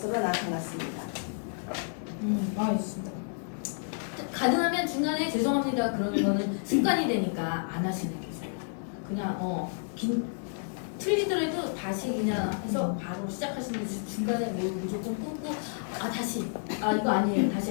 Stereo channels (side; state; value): right; silent; digital silence